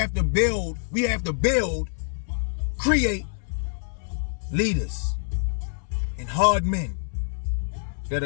to build. We have to build, create leaders and hard men that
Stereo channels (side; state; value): right; silent; 61 dB below the other